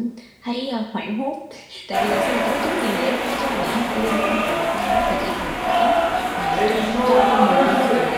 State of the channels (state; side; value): identical; both; correlation 1.00